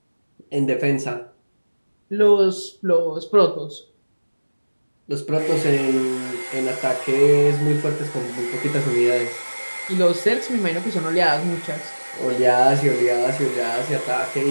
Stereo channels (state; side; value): inverted; both; correlation -1.00